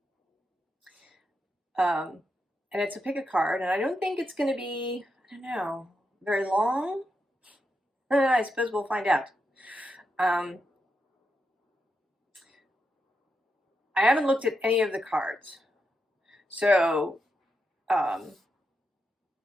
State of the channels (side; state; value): both; normal; correlation 0.85